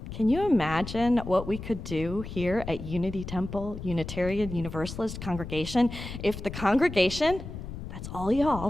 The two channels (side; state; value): left; noise; rumble, 9 dB below the sound